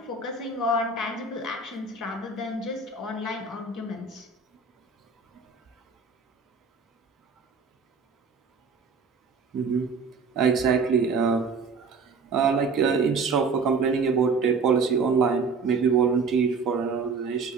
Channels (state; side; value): quieter; left; 4.6 dB